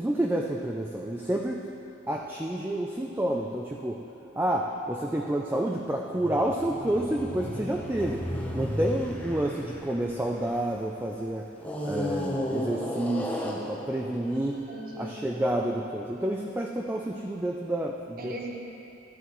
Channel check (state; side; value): normal; both; correlation 0.79